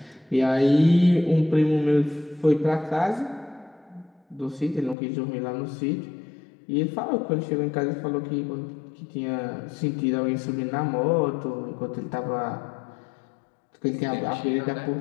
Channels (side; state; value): right; drops out; at 5.0 s